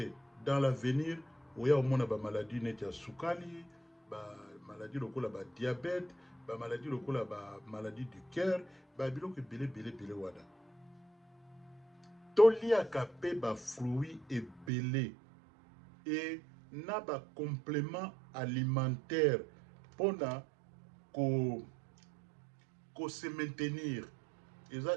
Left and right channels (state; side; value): drops out; left; at 14.7 s